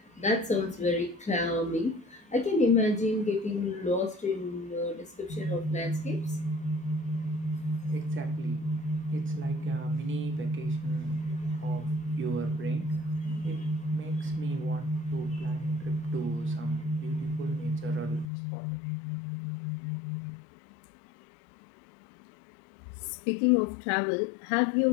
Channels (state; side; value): drops out; right; at 18.2 s